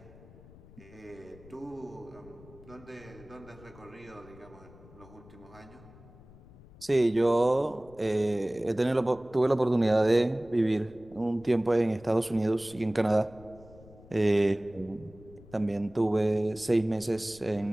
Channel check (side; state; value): left; noise; rumble, 22 dB below the sound